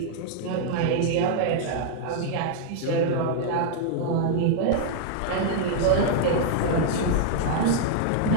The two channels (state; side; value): different; both; correlation -0.01